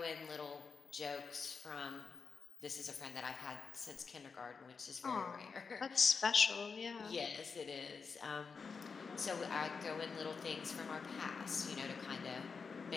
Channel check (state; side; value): quieter; right; 5.2 dB